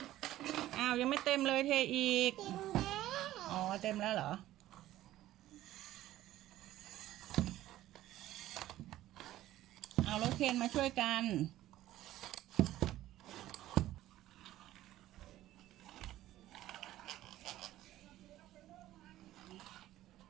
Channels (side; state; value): left; quieter; 14.5 dB